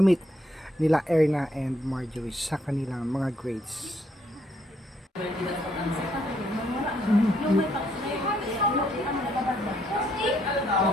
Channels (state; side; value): normal; both; correlation 0.71